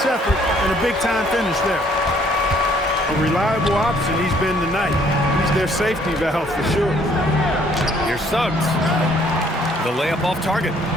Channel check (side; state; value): both; normal; correlation 0.63